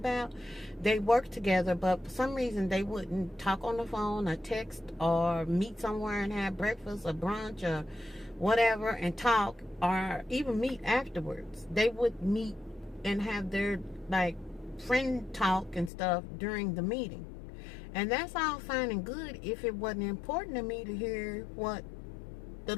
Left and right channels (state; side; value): drops out; right; at 15.9 s